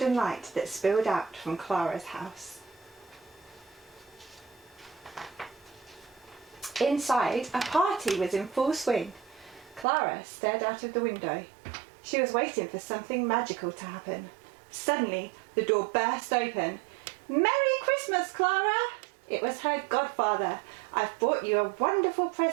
light that spilled out from Clara's house. Inside, a party was in full swing. Clara stared out of the window. She was waiting for something magical to happen. Suddenly, the door burst open. "Merry Christmas, Clara!" It was her godfather. "I've brought you a wonderful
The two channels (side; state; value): left; drops out; at 9.9 s